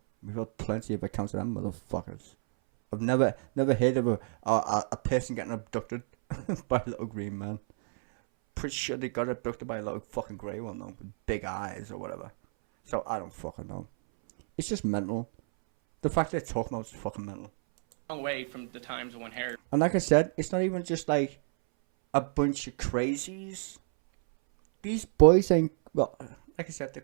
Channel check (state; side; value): silent; left; 58 dB below the other